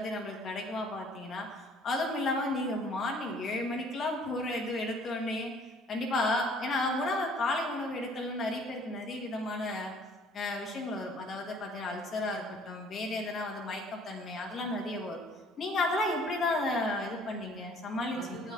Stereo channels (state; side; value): normal; both; correlation 0.56